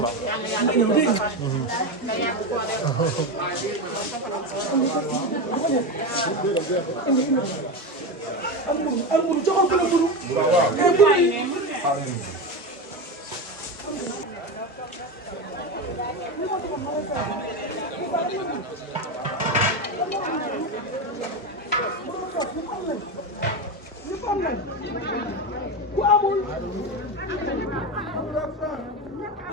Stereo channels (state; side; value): normal; both; correlation 0.18